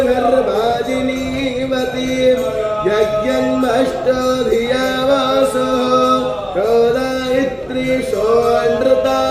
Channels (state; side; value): identical; both; correlation 1.00